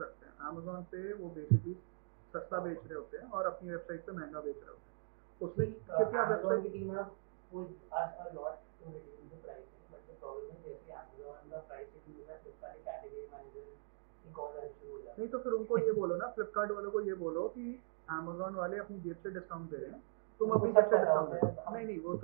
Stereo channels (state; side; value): silent; left; digital silence